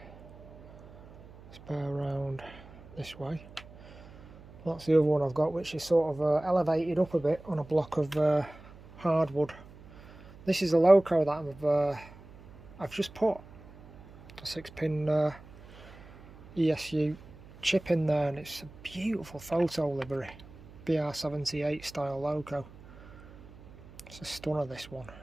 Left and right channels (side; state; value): right; noise; hum, 20 dB below the sound